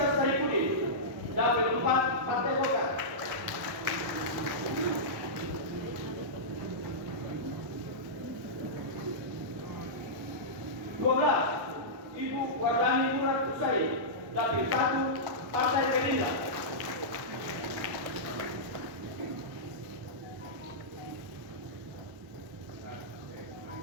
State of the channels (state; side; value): late; left; 1.4 ms